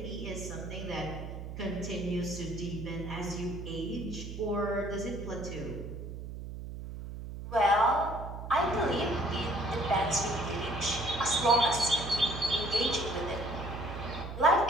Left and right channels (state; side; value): noise; right; hum, 9 dB below the sound